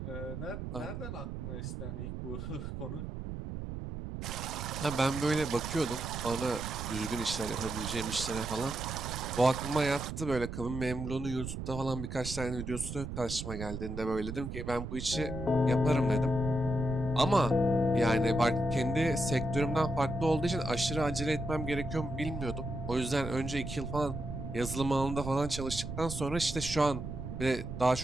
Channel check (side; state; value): right; noise; rumble, 6 dB below the sound